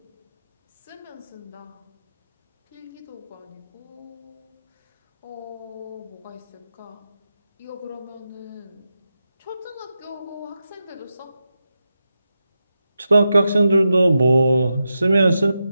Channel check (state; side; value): inverted; both; correlation -0.89